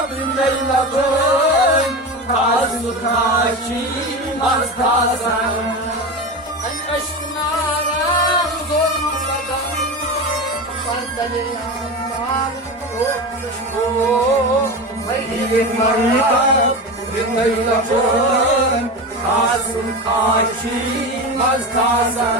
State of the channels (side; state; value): both; normal; correlation 0.24